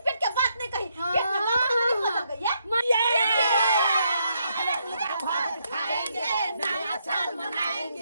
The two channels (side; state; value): both; inverted; correlation -0.76